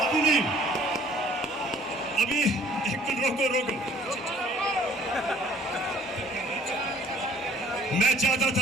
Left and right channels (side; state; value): both; normal; correlation 0.56